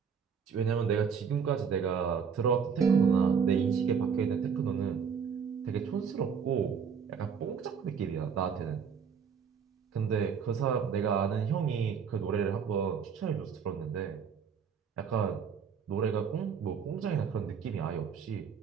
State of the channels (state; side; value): quieter; left; 6.7 dB